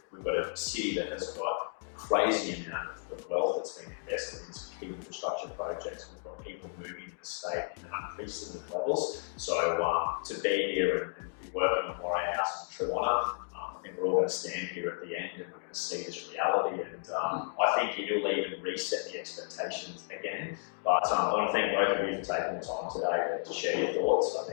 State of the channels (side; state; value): right; silent; digital silence